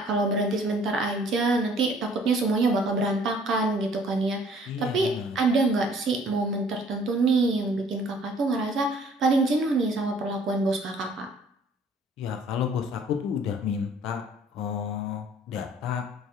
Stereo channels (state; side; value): normal; both; correlation 0.57